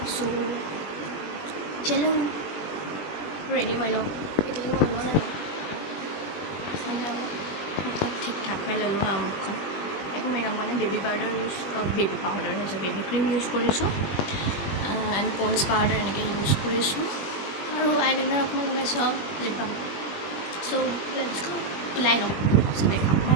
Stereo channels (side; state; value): right; late; 20 ms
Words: চ' চলো ৰেডি হৈ লওক এতিয়ালৈকে ওলোৱা নাই মানে মুখত ঠিক ঠাক হৈ ল'লোঁ আৰু মুখখন একো মেকআপ মানে বেবী পাউডাৰ হৈছে বেবী ক্ৰীম ইউজ কৰিছোঁ এণ্ড পন্স পাউডাৰ এনেকৈ ইউজ কৰিছোঁ আৰু আইলাইনাৰ অকণমান লগাইছোঁ আৰু লিপ বাম চ' লেটছ গো ওলাই লওঁ তাৰপিছত দেখাম